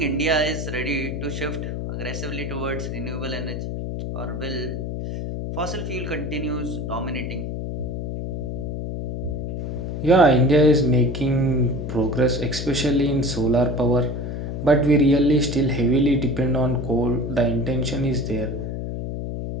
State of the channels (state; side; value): noise; left; hum, 4 dB below the sound